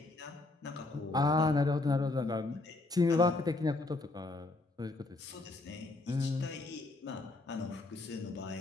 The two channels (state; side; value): quieter; right; 3.1 dB